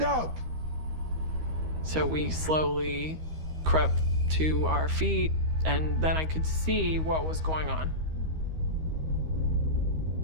up! So we slowly crept to our feet, and then I could see what was going on.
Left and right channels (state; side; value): late; left; 13 ms